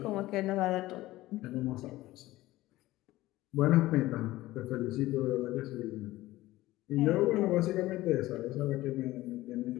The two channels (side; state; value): right; quieter; 17.1 dB